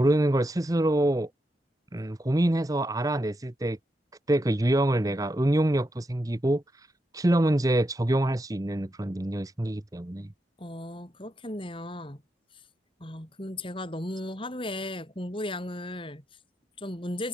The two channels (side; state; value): both; normal; correlation 0.84